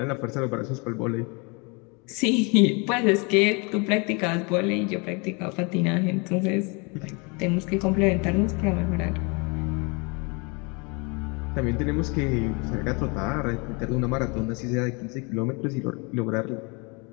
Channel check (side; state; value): right; quieter; 30.9 dB